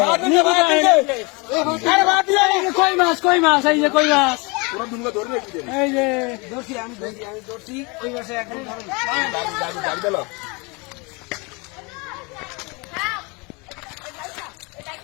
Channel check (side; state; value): right; quieter; 28.7 dB